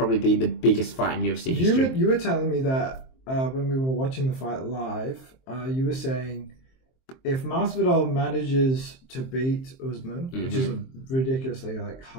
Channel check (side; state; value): right; late; 23 ms